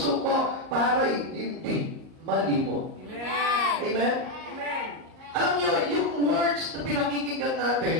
ko para hindi malimot. Amen. Amen? Amen. Alam niyo, yung words na pinakikinggan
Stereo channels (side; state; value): left; late; 38 ms